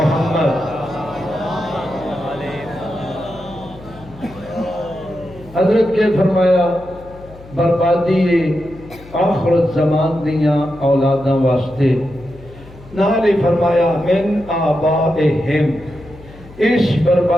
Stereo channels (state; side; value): noise; left; hum, 20 dB below the sound